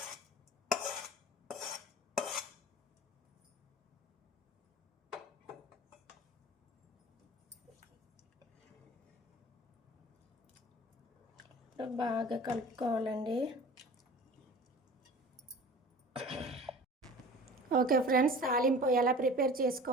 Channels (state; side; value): normal; both; correlation 0.41